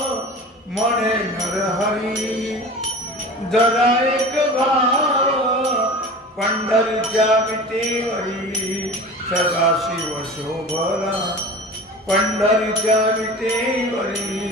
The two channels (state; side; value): normal; both; correlation 0.36